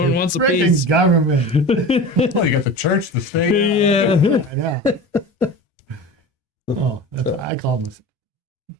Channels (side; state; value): both; normal; correlation 0.33